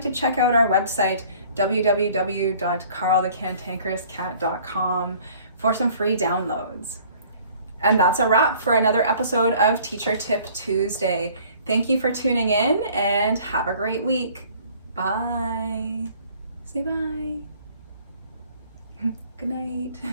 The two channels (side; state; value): both; inverted; correlation -0.53